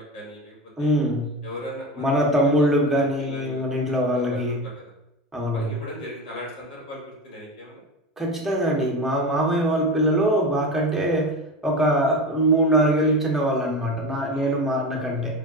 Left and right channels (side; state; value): both; normal; correlation 0.25